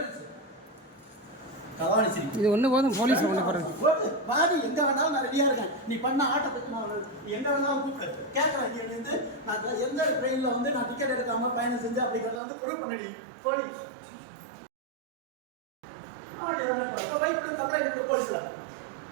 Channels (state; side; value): drops out; left; at 12.4 s